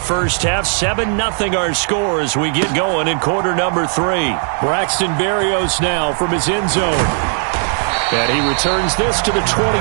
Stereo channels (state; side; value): silent; left; 55 dB below the other